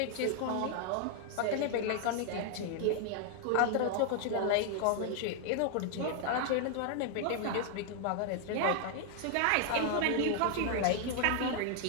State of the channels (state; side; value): different; both; correlation 0.00